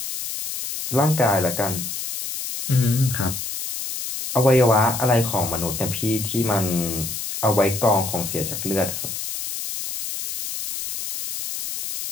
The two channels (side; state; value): left; noise; hiss, 6 dB below the sound